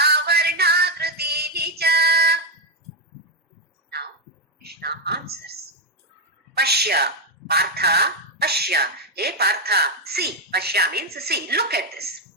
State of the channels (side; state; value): both; normal; correlation 0.05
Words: Varna Krutini cha. Now Krishna answers. Pashya, Partha, Pashya. Hey Partha, see. Pashya means see. Look at this.